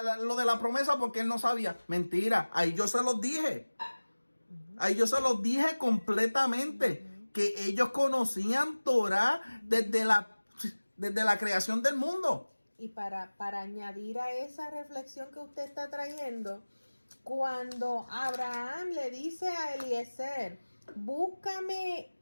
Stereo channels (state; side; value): inverted; both; correlation -1.00